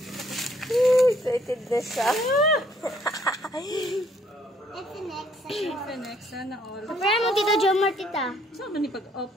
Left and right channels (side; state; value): both; normal; correlation 0.65